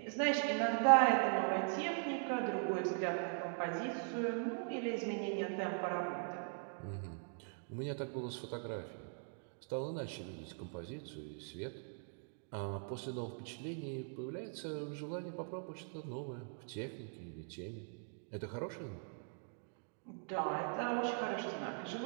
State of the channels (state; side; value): silent; left; 50 dB below the other